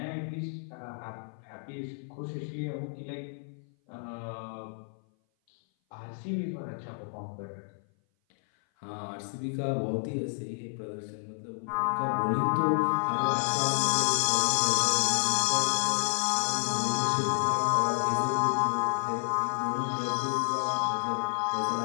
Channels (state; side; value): silent; right; 56 dB below the other